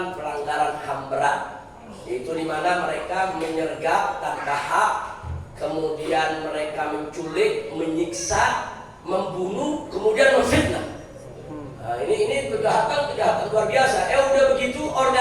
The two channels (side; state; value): both; identical; correlation 1.00